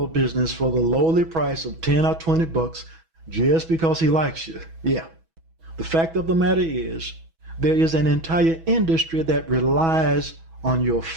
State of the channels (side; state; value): left; late; 6.1 ms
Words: business for the lowly price of 10 or 20 bucks just because he likes you. Yeah. The fact of the matter is, there is an entire industry that relies on your